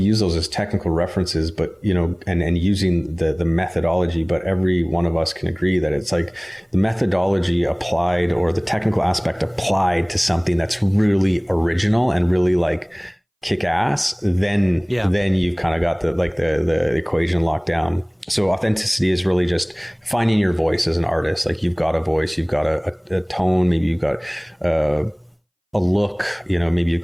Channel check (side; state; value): both; identical; correlation 1.00